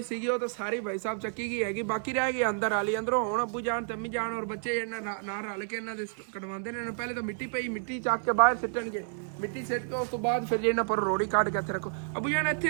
सी तो सारी भाई साहब चक्की गई हैगी बाकी रह गई अंदर वाली अंदरों हुण अबू जान तम्मी जान और बच्चे ना रल के इन्होंने कटवाते हैं पहले तो मिट्टी पई मिट्टी चक के बाहर सिटणगे मिट्टी सिट के उस तो बाद फिर इन्होंने पर रोड़ी काट के इत्थे रखो अबू जान इत्थे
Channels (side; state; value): left; silent; 56 dB below the other